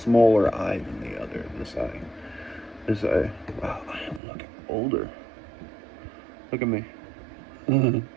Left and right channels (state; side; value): drops out; left; at 4.2 s